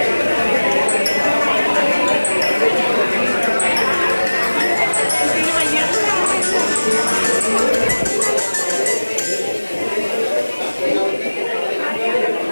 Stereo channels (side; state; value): both; inverted; correlation -1.00